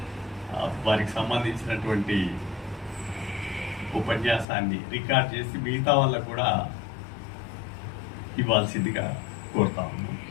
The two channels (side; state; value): right; drops out; at 4.5 s